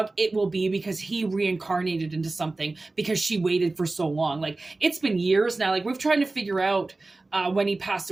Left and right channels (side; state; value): left; quieter; 3.2 dB